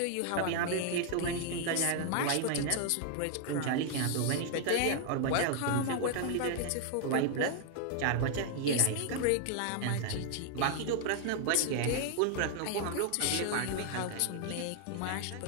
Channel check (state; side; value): different; both; correlation 0.00